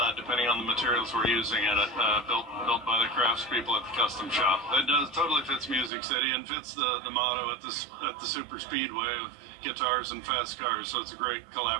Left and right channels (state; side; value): drops out; left; at 5.9 s